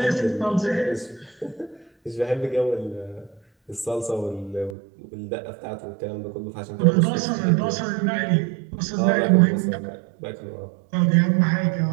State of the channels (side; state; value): left; drops out; at 4.8 s